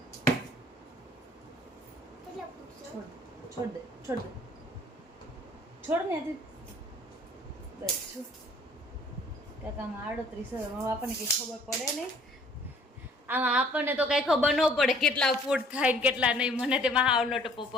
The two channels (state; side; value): normal; both; correlation 0.56